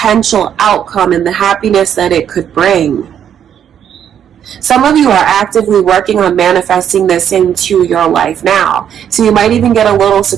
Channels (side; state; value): left; quieter; 9.2 dB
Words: outcome and the happiness that it could bring. Some of you are actively working on manifesting this into your life now. So you might even get a little